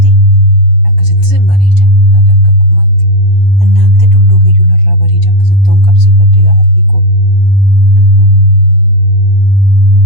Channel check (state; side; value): late; right; 8.0 ms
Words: akkasittis hin bareeda. Dargagummaatti. Annaante dulloome iyyuu narraa bareeda akkasitti on qabsiifadde aarri koo.